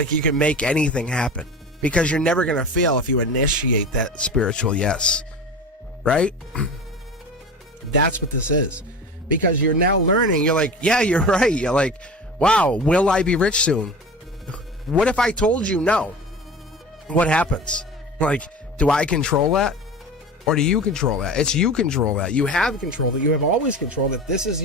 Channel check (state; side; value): normal; both; correlation 0.33